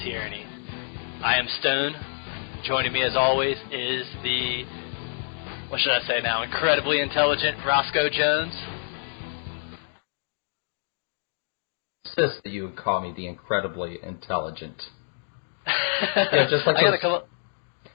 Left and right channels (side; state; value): right; silent; digital silence